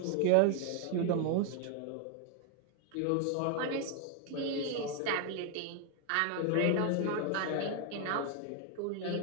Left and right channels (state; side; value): different; both; correlation 0.00